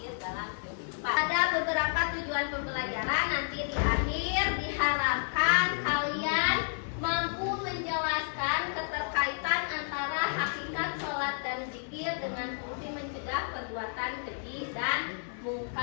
dalam kehidupan. Ada beberapa tujuan pembelajaran, nanti di akhir diharapkan kalian mampu menjelaskan keterkaitan antara hakikat sholat dan zikir dengan fungsi mencegah perbuatan keji dan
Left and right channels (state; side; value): silent; right; digital silence